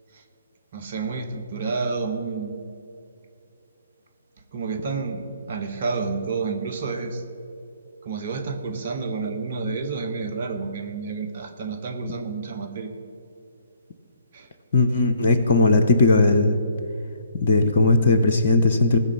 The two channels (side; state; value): both; inverted; correlation -0.62